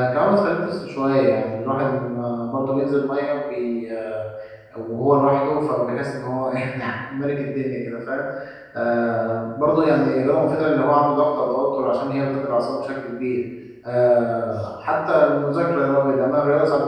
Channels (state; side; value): identical; both; correlation 1.00